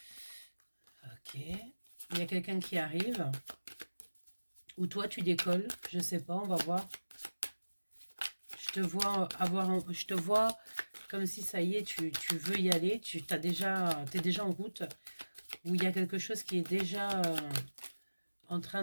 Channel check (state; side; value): inverted; both; correlation -1.00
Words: Il y a quelqu'un qui arrive. Ou toi, tu décolles. Je sais pas, on va voir. Je te vois je te vois comme si ça y est, tu veux y aller. T'es déjà en route. Ou il y a quelque chose qui est déjà en train